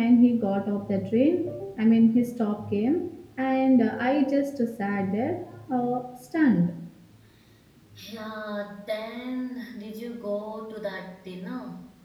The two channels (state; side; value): identical; both; correlation 1.00